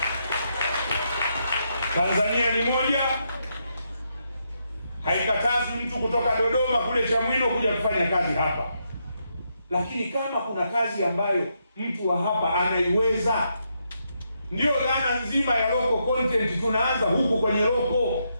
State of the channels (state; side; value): inverted; both; correlation -0.80